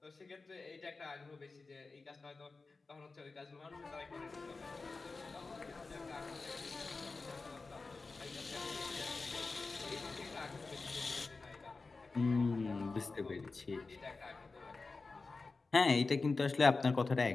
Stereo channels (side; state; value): right; quieter; 3.9 dB